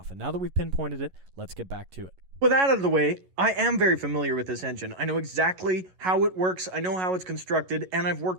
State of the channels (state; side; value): late; left; 11 ms